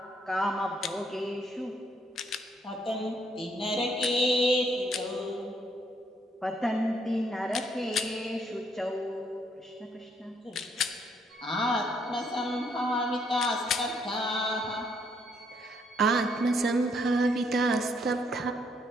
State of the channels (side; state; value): both; normal; correlation 0.71